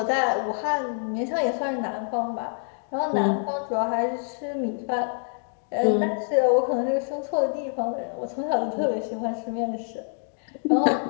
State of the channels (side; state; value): right; silent; 59 dB below the other